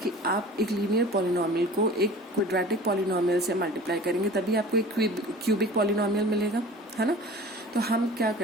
कि आप एक लीनियर पॉलिनोमियल को एक क्वाड्रेटिक पॉलिनोमियल से मल्टीप्लाई करेंगे तभी आपको एक क्यूबिक पॉलिनोमियल मिलेगा, है ना. तो हम क्या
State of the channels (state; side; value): normal; both; correlation 0.42